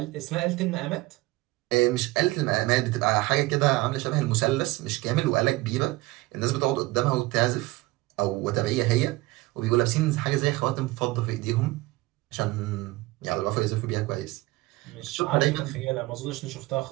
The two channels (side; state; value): left; quieter; 20.4 dB